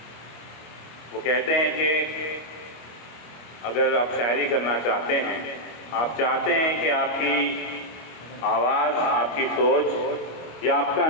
वो कहते हैं कि अगर आप शायरी करना चाहते हैं, आप चाहते हैं कि आपकी आवाज़, आपकी सोच या आपका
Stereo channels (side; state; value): right; late; 25 ms